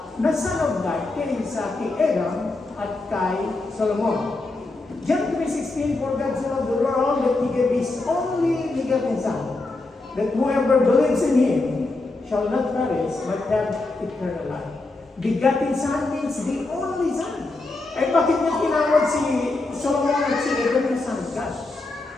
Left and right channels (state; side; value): quieter; right; 3.1 dB